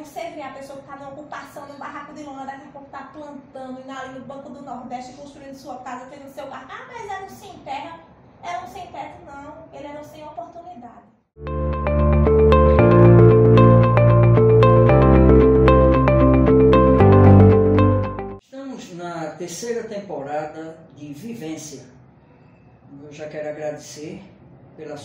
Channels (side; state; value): both; identical; correlation 1.00